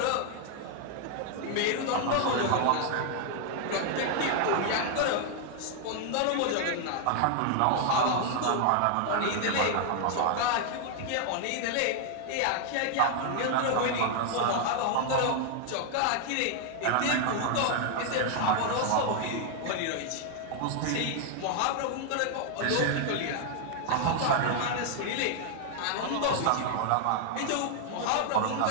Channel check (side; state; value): both; different; correlation 0.00